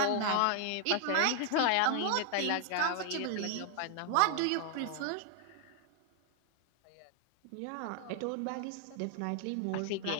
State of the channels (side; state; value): both; different; correlation 0.00